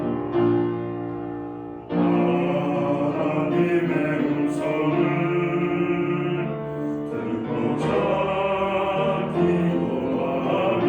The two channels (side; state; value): both; identical; correlation 1.00